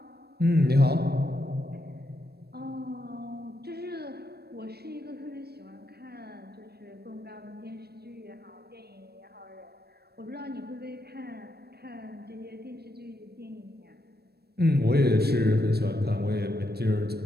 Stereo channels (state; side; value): late; left; 0.47 ms